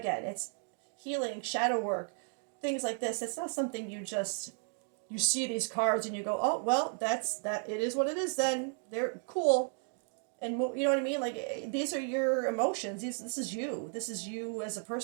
it's healing, shadow work, things like this. It's not something you see these cards and you go, oh, well, it is what it is then. They're cool. And you know what I mean? Like, these are your emotions. This is you. This is you as a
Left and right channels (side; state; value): left; silent; 55 dB below the other